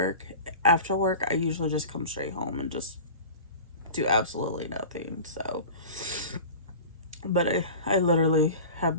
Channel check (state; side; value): inverted; both; correlation -0.35